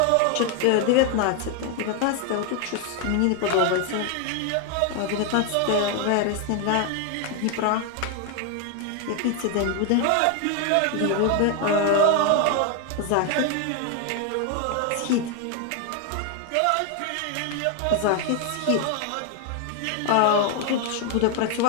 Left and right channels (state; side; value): different; both; correlation 0.01